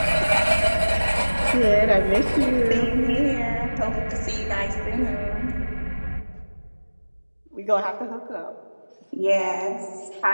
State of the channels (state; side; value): inverted; both; correlation -1.00